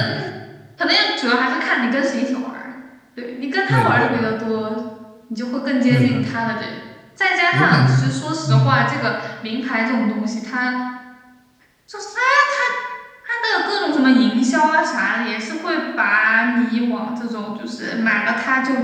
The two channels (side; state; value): both; identical; correlation 1.00